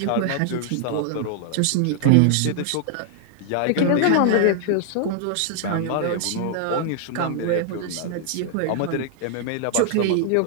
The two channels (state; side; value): different; both; correlation 0.00